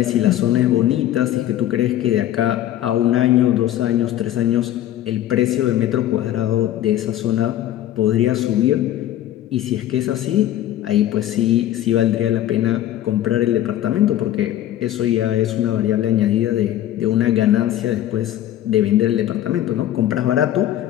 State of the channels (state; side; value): quieter; right; 12.7 dB